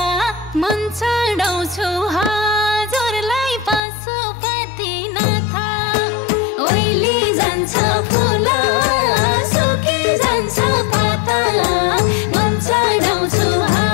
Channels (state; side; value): drops out; right; at 3.8 s